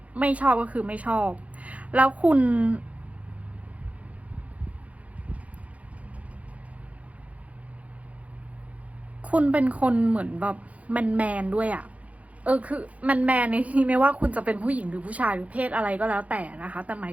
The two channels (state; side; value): late; left; 0.067 ms